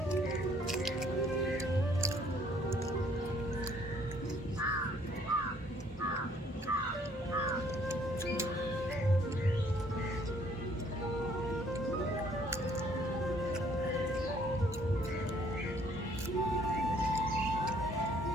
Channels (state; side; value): normal; both; correlation 0.62